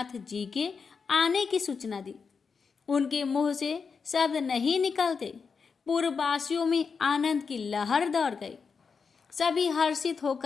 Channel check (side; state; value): right; quieter; 5.5 dB